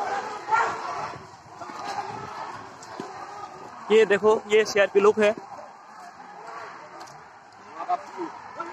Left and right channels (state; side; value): identical; both; correlation 1.00